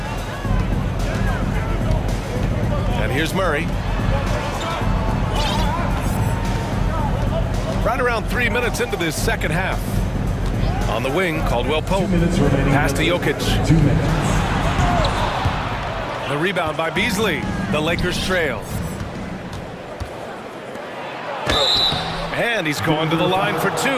And here's Murray. Right around 3 minutes into this second half. On the wing, Caldwell-Pope. Pass to Jokic. 2 minutes. The rebound by Beasley. The Lakers trail. And he's going to the line for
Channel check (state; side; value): identical; both; correlation 1.00